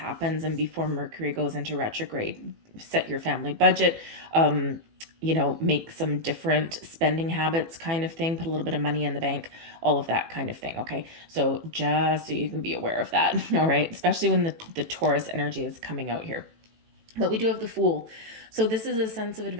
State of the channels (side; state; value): left; late; 18 ms